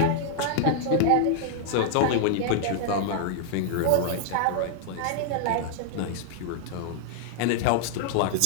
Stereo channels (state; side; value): different; both; correlation -0.01